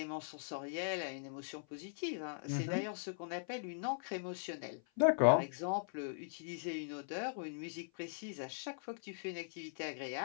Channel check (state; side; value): silent; right; 51 dB below the other